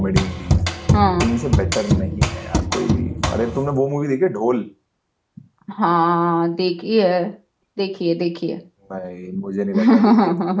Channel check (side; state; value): both; identical; correlation 1.00